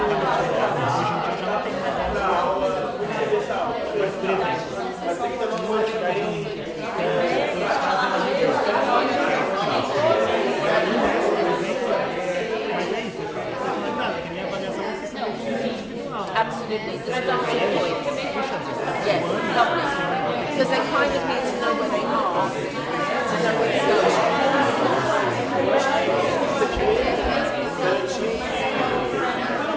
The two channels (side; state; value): both; identical; correlation 1.00